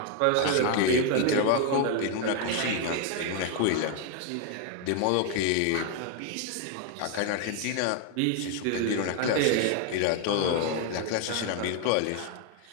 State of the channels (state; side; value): different; both; correlation 0.00